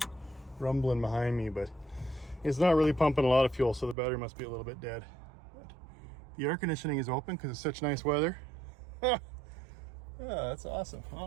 rumbling behind me, but it's not really pumping a lot of fuel, so the battery must be a little bit dead. But the air conditioning is open because it's such nice weather. Yeah, that's awesome.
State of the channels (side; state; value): left; drops out; at 4.0 s